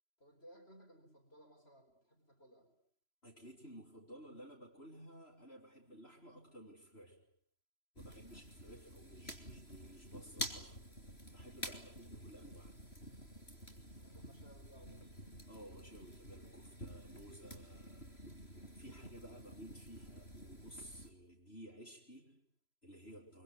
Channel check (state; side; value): late; right; 3.0 ms